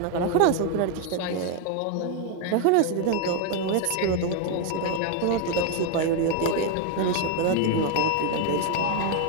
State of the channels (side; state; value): both; different; correlation 0.00